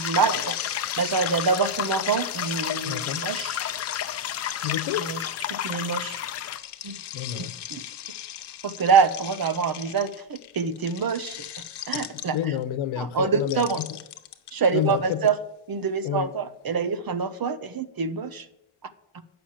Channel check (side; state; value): both; normal; correlation -0.06